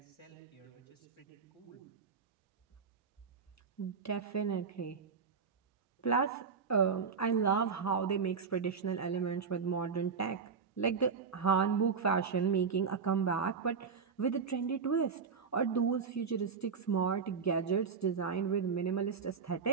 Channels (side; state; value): left; quieter; 5.7 dB